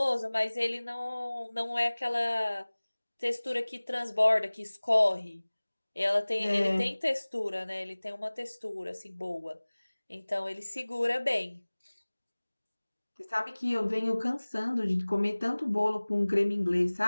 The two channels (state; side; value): inverted; both; correlation -1.00